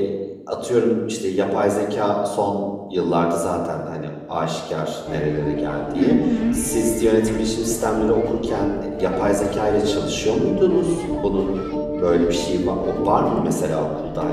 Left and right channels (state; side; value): identical; both; correlation 1.00